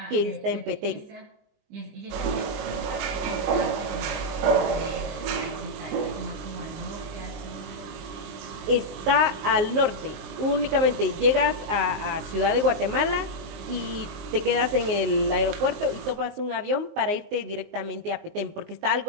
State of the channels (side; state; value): left; late; 19 ms